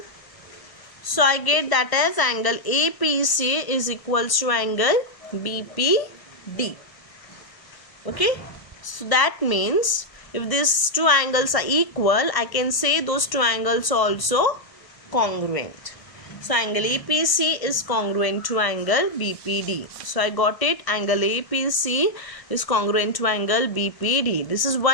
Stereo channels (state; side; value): late; right; 1.0 ms